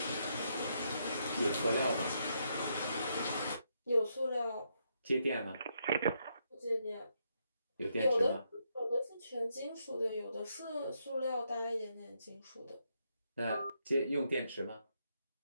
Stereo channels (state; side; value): inverted; both; correlation -0.78